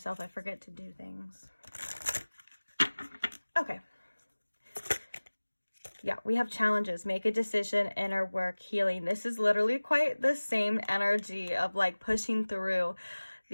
I forget to do things. Okay. Yeah, we have challenges. Make a decision, inner work, healing. This is literally quite the same energy of like pushing through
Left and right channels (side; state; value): both; inverted; correlation -1.00